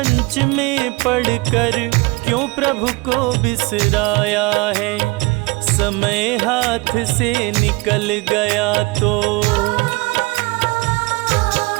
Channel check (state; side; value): quieter; left; 25.0 dB